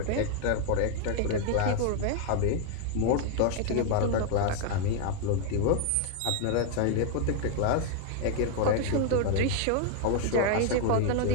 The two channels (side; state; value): both; different; correlation 0.00